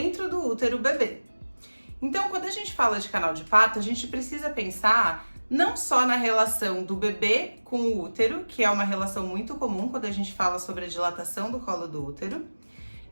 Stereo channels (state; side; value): inverted; both; correlation -1.00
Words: do útero o bebê. Então, quando a gente fala de canal de parto, a gente precisa pensar não só na relação do bebê com o útero, que é uma relação muito comum quando a gente fala sobre a dilatação do colo do útero,